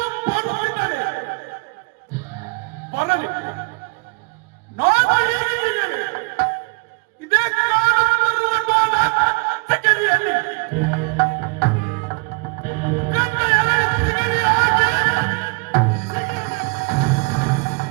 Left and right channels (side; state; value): left; quieter; 31.5 dB